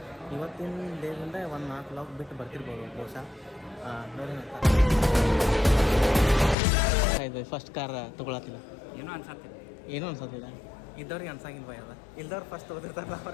ಇವತ್ತಿನ ಡೇದಿಂದ ಒಂದು 4 ಲಾಗ್ ಬಿಟ್ಟು ಬರ್ತಿರ್ಬೋದು ಬಹುಶಃ. ನೋಡಿ ಇದು ಫಸ್ಟ್ ಕಾರ್ ತೊಗೊಳತ್ತಿಲ್ಲ, ಏನೂ ಅನ್ಸತ್ತಿಲ್ಲ. ಇದ್ದವ್ರಿಗೆ ಅನ್ಸಂಗಿಲ್ಲ ಬೈ. ಅದ ಇಲ್ದವ್ರು ಫಸ್ಟ್ ಓದಿರ್ತಾರಲ್ಲ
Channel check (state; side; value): drops out; right; at 6.6 s